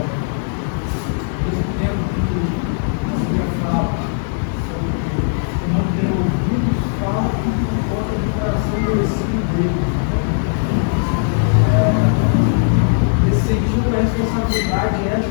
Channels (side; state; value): right; silent; digital silence